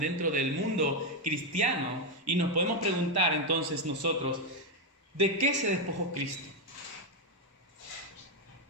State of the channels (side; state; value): both; normal; correlation 0.05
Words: dentro del mundo cristiano y nos podemos preguntar entonces nosotros, ¿de qué se despojó Cristo?